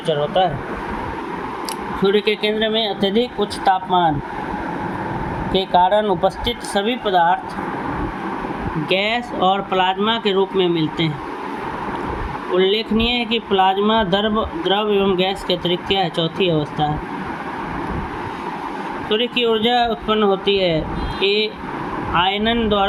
होता है। सूर्य के केंद्र में अत्यधिक उच्च तापमान के कारण उपस्थित सभी पदार्थ गैस और प्लाज्मा के रूप में मिलते हैं। उल्लेखनीय है कि प्लाज्मा द्रव एवं गैस के अतिरिक्त क्या है, चौथी अवस्था है। सूर्य की ऊर्जा उत्पन्न होती है: ए आयनन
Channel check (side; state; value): both; identical; correlation 1.00